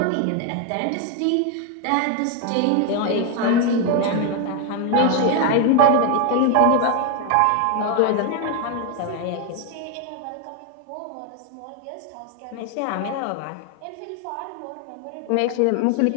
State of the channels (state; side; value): different; both; correlation 0.00